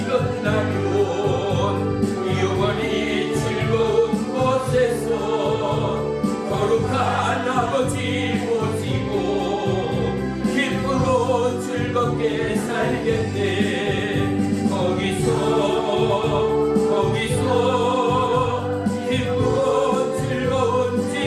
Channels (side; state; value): both; identical; correlation 1.00